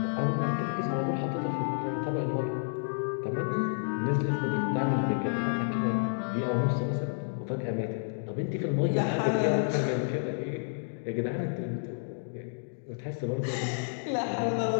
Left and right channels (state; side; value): silent; right; digital silence